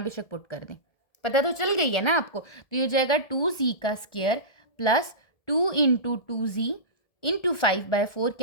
बेशक पुट कर दें, पता तो चल गई है ना आपको। तो ये हो जाएगा 2z का स्क्वायर + 2 इंटू 2z इंटू 5/4।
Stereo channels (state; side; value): late; right; 1.7 ms